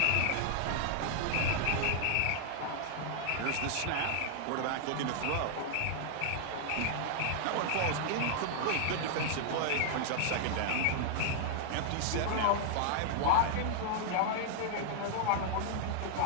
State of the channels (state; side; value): different; both; correlation 0.00